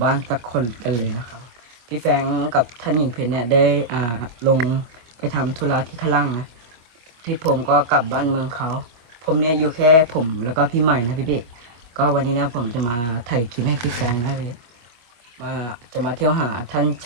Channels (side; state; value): left; late; 25 ms